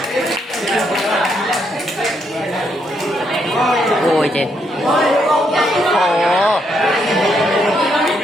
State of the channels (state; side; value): normal; both; correlation 0.76